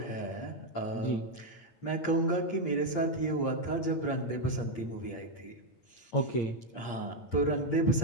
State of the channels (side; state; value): right; late; 8.5 ms